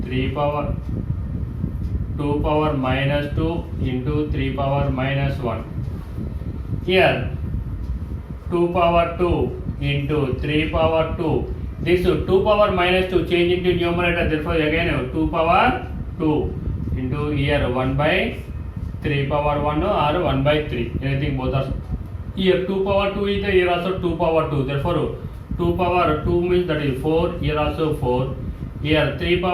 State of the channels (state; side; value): identical; both; correlation 1.00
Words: 3 power 2 power minus 2 into 3 power minus 1. Here 2 power 2 into 3 power 2. This 2 power minus 2 change into numerator, therefore again 2 power 2 into here 1 by 3 power 1 or 1 by 3. Anything both are. Here 2 power 2 is there, here also 2 power 2. Therefore 2 power 2 means that is 4, here also 4. Here 3